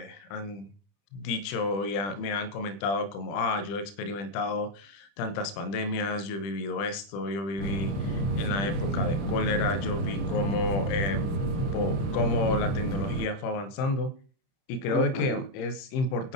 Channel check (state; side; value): late; right; 30 ms